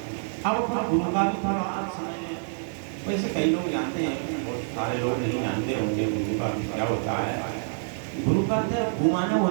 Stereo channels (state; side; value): silent; left; digital silence